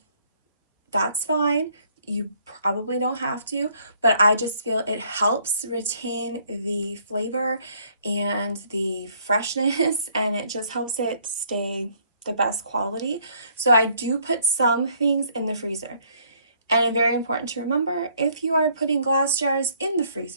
that's fine. You probably don't have to, but I just feel it helps retain the flavor and the freshness, and it just helps it stay the best quality. So I do put some things in the freezer. And it's very important to remember, if you are putting glass jars in the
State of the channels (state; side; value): inverted; both; correlation -0.65